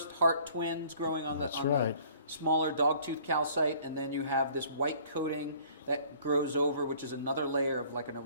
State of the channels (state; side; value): inverted; both; correlation -0.54